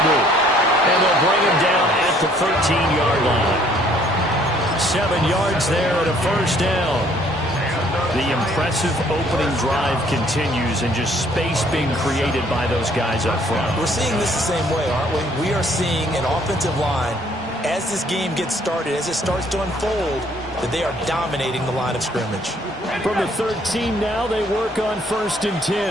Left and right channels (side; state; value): both; normal; correlation 0.62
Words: And they'll bring him down at the 13-yard line. 7 yards there and a first down. The impressive opening drive continues, and just space being created by those guys up front. We're seeing this the same way, aren't we? We are seeing an offensive line, as this game gets started, as it starts to unfold, that they are dominating the line of scrimmage. From the 13 now, they work on 1st and